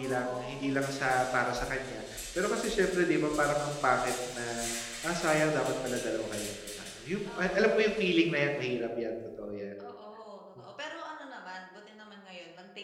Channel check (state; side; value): identical; both; correlation 1.00